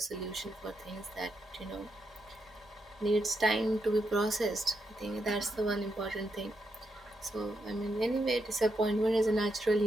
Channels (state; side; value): normal; both; correlation 0.82